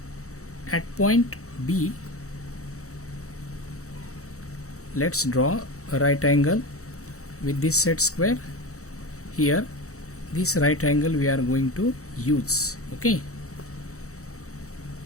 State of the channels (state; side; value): late; right; 0.65 ms